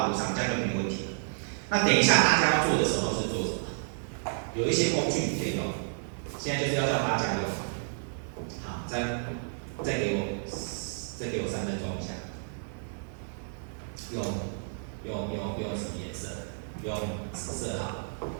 路上，这样就没问题了。那等一下大家要做的时候是做什么？有一些工具你可以用，现在就是要叫大家用。好，再给我3分钟一下。用什么颜色？用紫色好，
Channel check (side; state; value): left; silent; 57 dB below the other